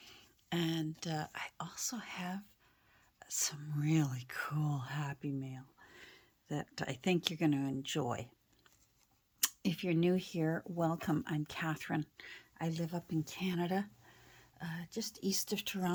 And I also have some really cool Happy Mail that I think you're going to enjoy. If you're new here, welcome. I'm Catherine. I live up in Canada, just east of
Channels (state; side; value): identical; both; correlation 1.00